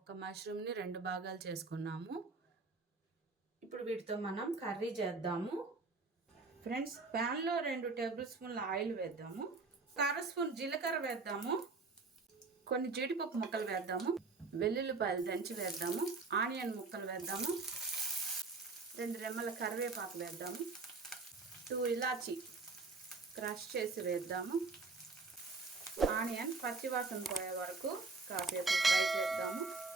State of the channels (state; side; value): quieter; left; 3.9 dB